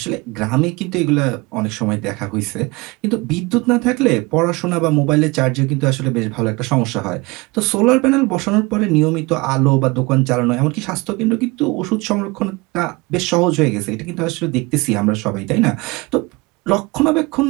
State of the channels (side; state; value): left; quieter; 24.5 dB